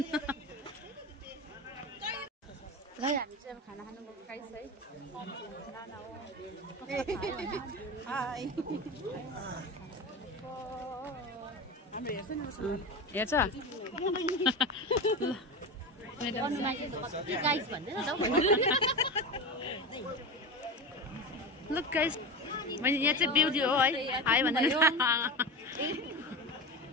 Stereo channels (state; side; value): normal; both; correlation 0.23